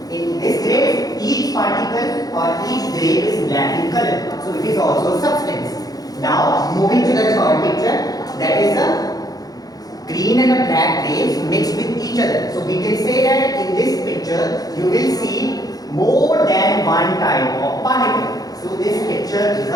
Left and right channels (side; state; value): right; late; 0.18 ms